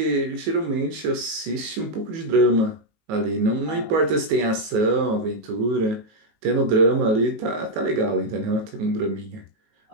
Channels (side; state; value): left; late; 19 ms